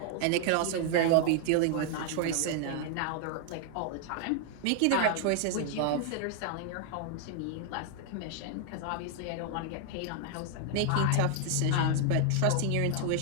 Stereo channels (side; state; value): both; different; correlation 0.00